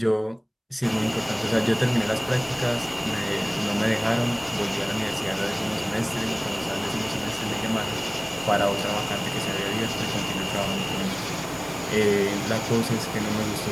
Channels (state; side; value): identical; both; correlation 1.00